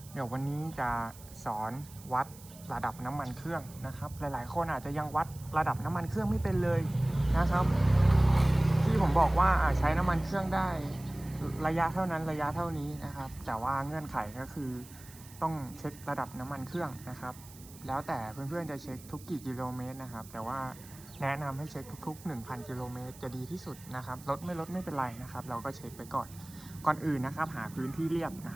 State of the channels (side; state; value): right; noise; hiss, 20 dB below the sound